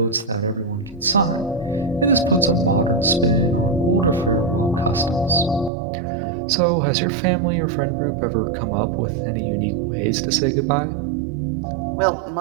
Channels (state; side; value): drops out; left; at 5.7 s